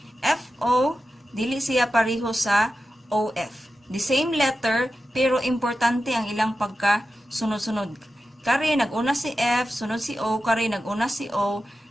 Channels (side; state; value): both; normal; correlation 0.92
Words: FO, dili siya pareho sa OF. The same letter, pero importante ang ilang pagkasunod-sunod. Kari, nag-una si F, sunod si O, kari, nag-una si O,